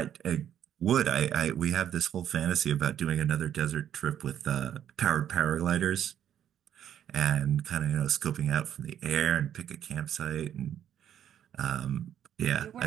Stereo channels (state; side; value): quieter; left; 10.1 dB